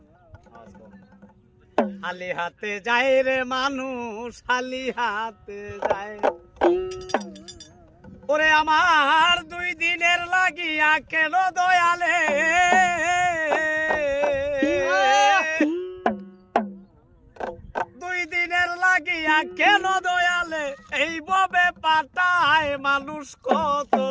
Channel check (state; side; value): identical; both; correlation 1.00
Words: খালি হাতে যায় রে মানুষ খালি হাতে যায় ওরে আমার 2 দিনের লাগিয়া কেন দয়ালে 2 দিনের লাগিয়া কেন দয়ালে এইভাবে পাঠায় মানুষ কত